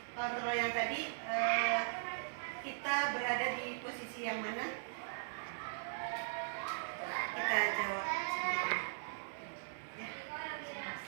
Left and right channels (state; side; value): silent; left; digital silence